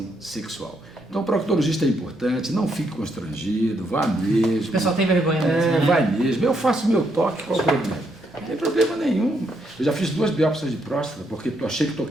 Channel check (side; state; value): both; normal; correlation 0.76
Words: sexual. Então, o proctologista é importante, não fique constrangido, vá mesmo. O pessoal tem vergonha mesmo, né? Vai mesmo. Eu faço meu toque, qual o problema? Não tem problema nenhum. Eu já fiz 2 biópsias de próstata, porque eu achei que